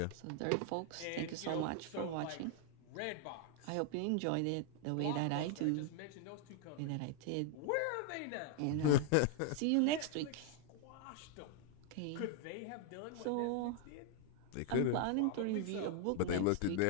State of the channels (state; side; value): different; both; correlation 0.00